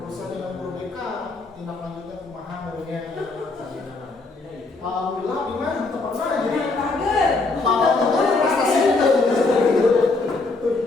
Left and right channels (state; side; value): quieter; right; 3.6 dB